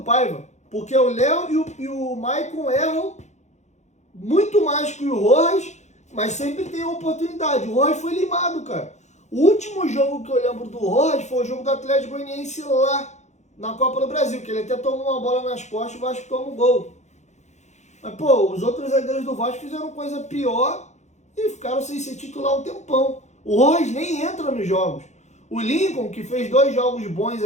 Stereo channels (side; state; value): right; late; 0.33 ms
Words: Paiva. Porque o Léo e o Maicon erram muito mais que o Rojas, mas sempre tem oportunidade. O Rojas foi limado, cara. O último jogo que eu lembro do Rojas foi o jogo do Atlético Goianiense lá na Copa do Brasil, que ele até tomou uma bola nas costas e o Vasco toma um gol. Mas, pô, os outros zagueiros do Vasco fizeram coisa pior e ficaram sem ser titular um tempão. O Rojas nem entra nos jogos. O Lincoln, que fez 2 jogos bons